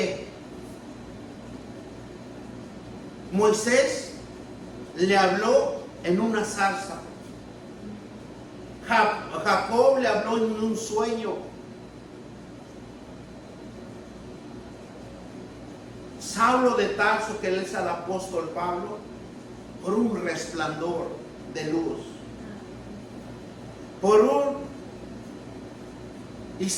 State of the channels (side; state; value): both; identical; correlation 1.00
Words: Moisés le habló en una zarza, Jacob le habló en un sueño, Saulo de Tarso, que él es el apóstol Pablo, por un resplandor de luz, por un